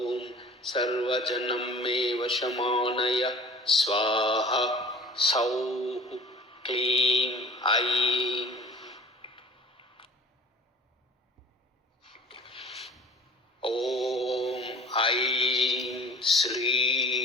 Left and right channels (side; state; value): both; normal; correlation 0.45